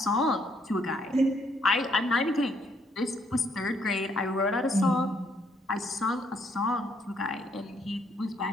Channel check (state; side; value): normal; both; correlation 0.70